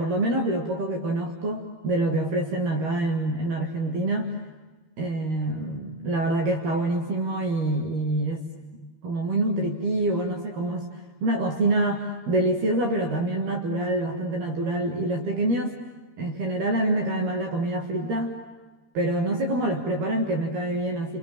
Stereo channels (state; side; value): late; left; 13 ms